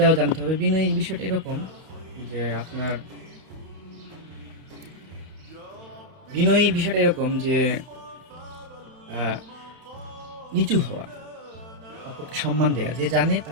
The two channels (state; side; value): late; left; 31 ms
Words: জানতে হবে। বিনয়ী বিষয়টা এরকম যে আপনার বিনয়ী বিষয়টা এরকম যে আহ, নিচু হওয়া, অপরকে সম্মান দেওয়া, যে জানে